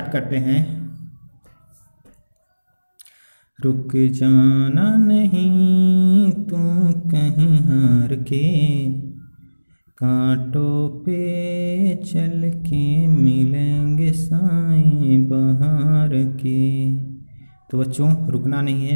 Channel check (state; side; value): inverted; both; correlation -1.00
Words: करते हैं। रुक जाना नहीं तू कहीं हार के, कांटों पे चल के मिलेंगे साए बहार के। तो बच्चों रुकना नहीं